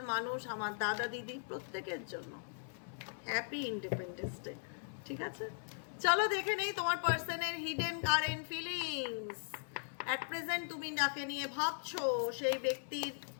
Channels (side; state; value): right; silent; digital silence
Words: মানুষ, আমার দাদা দিদি, প্রত্যেকের জন্য হ্যাপি ইন্ডিপেন্ডেন্স ডে। ঠিক আছে, চলো দেখে নেই তোমার পার্সনের hidden current feelings. At present তুমি যাকে নিয়ে ভাবছো সেই ব্যক্তির